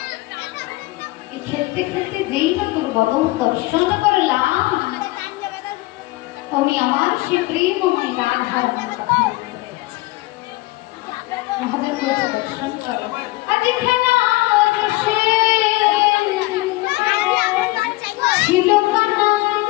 খেলতে খেলতে যেই না তোর বদন দর্শন করলাম অমনি আমার সে প্রেমময় রাধার কথা মনে পড়ে গেছে রাধার কাছে দর্শন করো আজ খেলা রসে ছিল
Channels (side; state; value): right; quieter; 20.6 dB